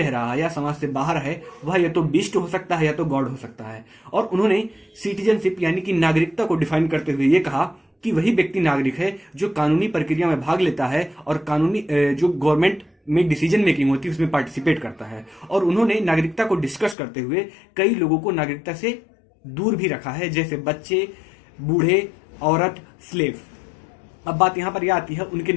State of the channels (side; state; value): right; drops out; at 16.9 s